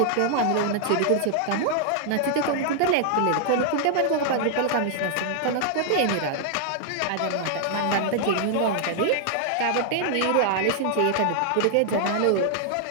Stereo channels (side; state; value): both; different; correlation -0.01